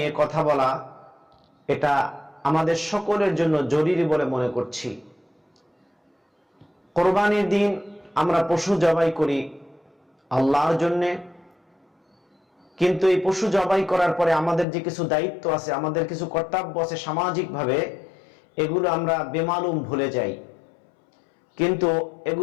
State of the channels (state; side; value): drops out; right; at 14.7 s